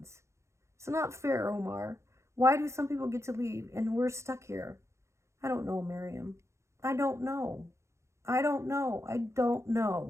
It's not fair, Omar. Why do some people get to leave and we're stuck here? I don't know, Miriam. I don't know. I don't know. I don't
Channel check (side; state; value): left; late; 0.14 ms